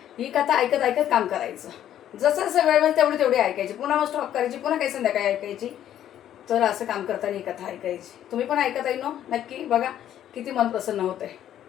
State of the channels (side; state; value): right; quieter; 11.1 dB